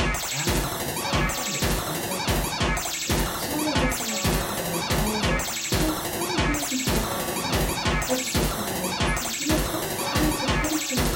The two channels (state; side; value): identical; both; correlation 1.00